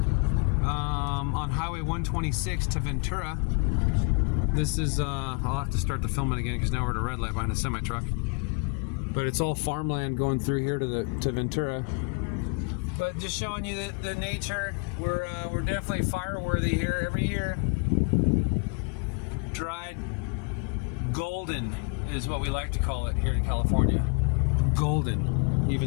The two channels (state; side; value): quieter; right; 35.3 dB